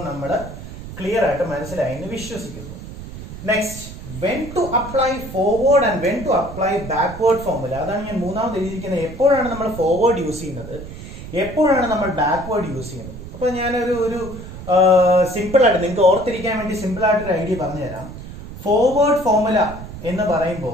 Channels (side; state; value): right; noise; rumble, 12 dB below the sound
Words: നമ്മൾ ക്ലിയർ ആയിട്ട് മനസ്സിലായി എന്ന് വിശ്വസിക്കുന്നു. Next, when to apply forward and when to apply backward formula. അതാണ് ഞാൻ മൂന്നാമത് എഴുതിയിരിക്കുന്നത്. എപ്പോഴാണ് നമ്മൾ ഫോർവേഡ് യൂസ് ചെയ്യുന്നത്, എപ്പോഴാണ് നമ്മൾ ബാക്ക്വേർഡ് യൂസ് ചെയ്യുന്നത്? അപ്പൊ ഞാനൊരു സിമ്പിൾ ആയിട്ട് നിങ്ങൾക്ക് ഓർത്തിരിക്കാൻ വേണ്ടി സിമ്പിൾ ആയിട്ടൊരു ഐഡിയ പറഞ്ഞു തരാം. ഫോർവേഡ് ഫോർമുല എന്ന്